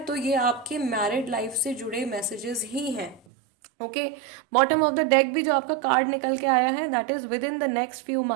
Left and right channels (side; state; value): left; drops out; at 3.2 s